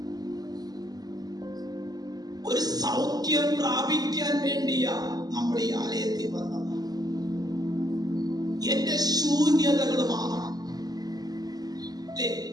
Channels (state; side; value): late; left; 0.19 ms